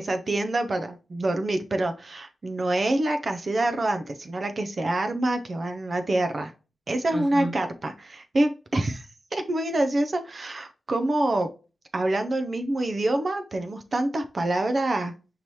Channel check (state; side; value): normal; both; correlation 0.95